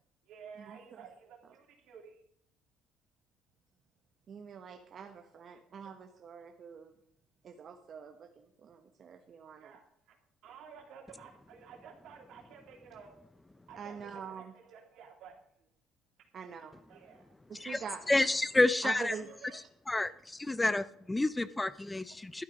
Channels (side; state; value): both; normal; correlation 0.95